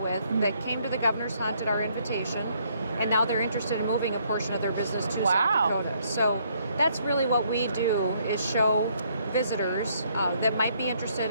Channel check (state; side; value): inverted; both; correlation -0.69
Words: that came to the governor's hunt at our invitation, and now they're interested in moving a portion of their business to South Dakota. So that's really what we do, is show visitors that might be